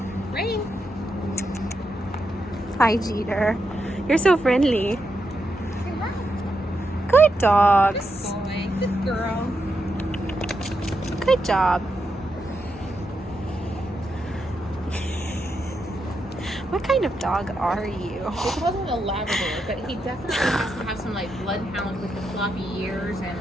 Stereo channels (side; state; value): both; normal; correlation 0.84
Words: Rain. Hi, Jeter. You're so friendly. Say hi. Good dogs. Good boy. Good girl. Good job. What kind of dog are you? They call him a Labrador, but he definitely has to have some like bloodhound with the floppy ears and